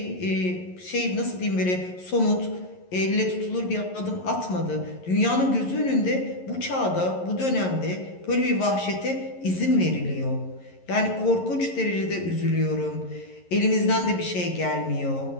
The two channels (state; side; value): late; right; 11 ms